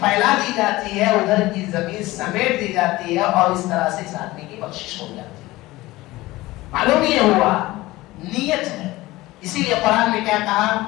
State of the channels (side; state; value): right; quieter; 18.8 dB